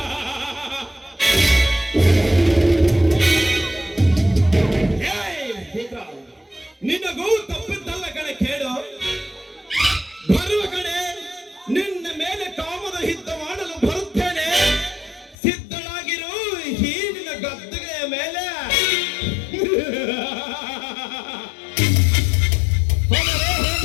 ನಿನಗೂ ತಪ್ಪಿದ್ದಲ್ಲ ಕಡೆ ಕೇಳು. ಬರುವ ಕಡೆ ನಿನ್ನ ಮೇಲೆ ಕಾಮದ ಯುದ್ಧ ಮಾಡಲು ಬರುತ್ತೇನೆ. ಸಿದ್ಧನಾಗಿರು ಈ ನಿನ್ನ ಗದ್ದುಗೆಯ ಮೇಲೆ.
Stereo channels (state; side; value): drops out; right; at 15.4 s